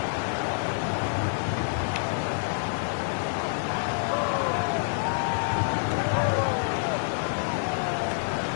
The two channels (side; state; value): right; silent; digital silence